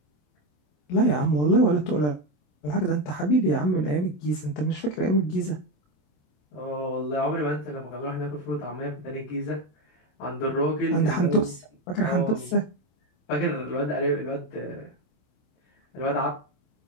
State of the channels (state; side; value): late; right; 27 ms